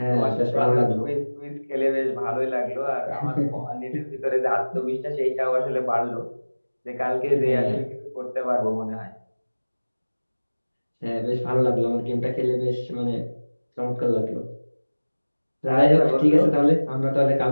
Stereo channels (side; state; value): both; inverted; correlation -1.00